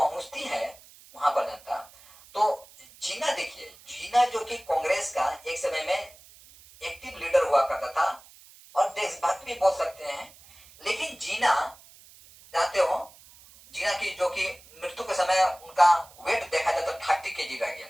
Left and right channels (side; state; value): right; noise; hiss, 23 dB below the sound